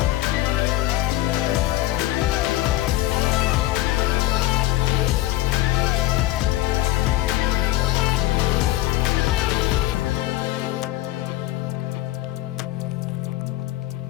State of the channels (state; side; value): quieter; right; 16.1 dB